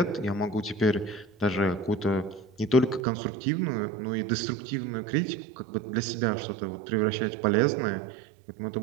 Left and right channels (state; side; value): drops out; left; at 3.0 s